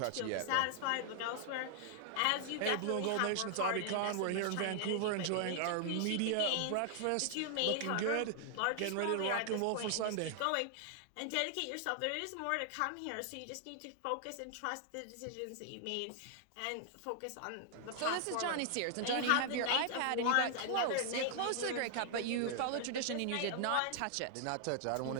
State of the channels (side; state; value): both; different; correlation 0.00